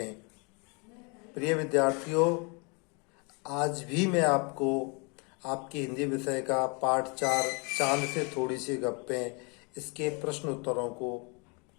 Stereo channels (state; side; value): quieter; right; 32.9 dB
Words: प्रिय विद्यार्थियों, आज भी मैं आपको आपकी हिंदी विषय का पाठ 4 चांद से थोड़ी सी गप्पें इसके प्रश्न उत्तरों को